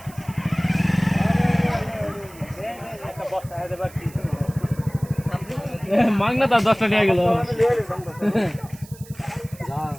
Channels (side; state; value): right; noise; hiss, 21 dB below the sound